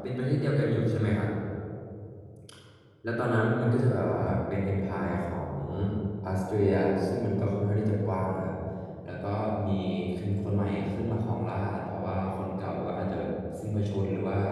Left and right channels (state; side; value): identical; both; correlation 1.00